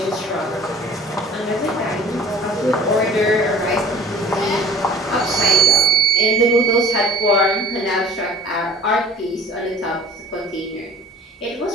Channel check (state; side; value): normal; both; correlation 0.47